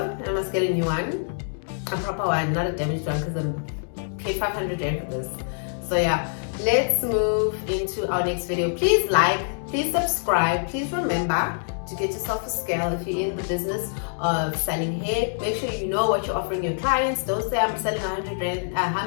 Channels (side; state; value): right; silent; digital silence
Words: I must get a new one, a proper one, not a damaged one, because I'm paid 500 rand for this. So yeah, let's move into our next video. Please like, please subscribe, please remember to get yourself a scale if you're in the business of selling hair. Make sure you know what you're offering your clients. Don't say I'm selling